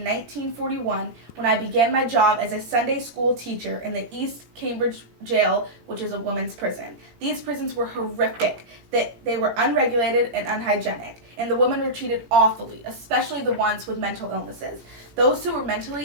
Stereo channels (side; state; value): left; late; 18 ms